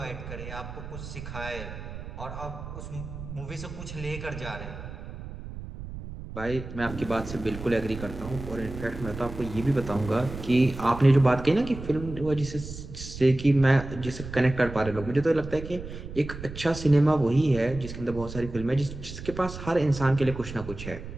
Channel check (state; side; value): noise; right; rumble, 11 dB below the sound